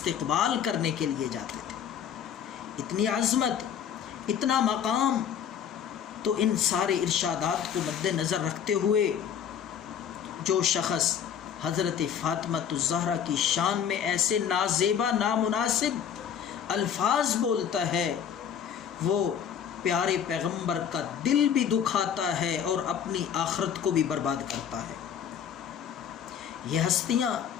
کرنے کے لیے جاتے تھے۔ اتنی عظمت، اتنا مقام، تو ان سارے ارشادات کو مد نظر رکھتے ہوئے جو شخص حضرت فاطمہ الزہرا کی شان میں ایسے نازیبا، نامناسب الفاظ بولتا ہے وہ پیارے پیغمبر کا دل بھی دکھاتا ہے اور اپنی آخرت کو بھی برباد کرتا ہے۔ یہ ہستیاں،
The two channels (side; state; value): right; quieter; 8.4 dB